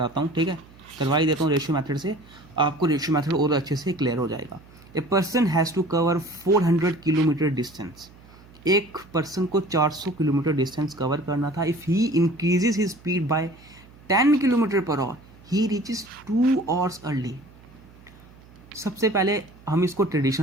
हूँ, ठीक है, करवा ही देता हूँ रेशियो मेथड से, आपको रेशियो मेथड और अच्छे से क्लियर हो जाएगा। A person has to cover 400 kilometre distance, एक पर्सन को 400 किलोमीटर डिस्टेंस कवर करना था। If he increases his speed by 10 kilometre per hour he reaches 2 hours early. सबसे पहले हम इसको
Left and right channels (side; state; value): right; noise; hum, 24 dB below the sound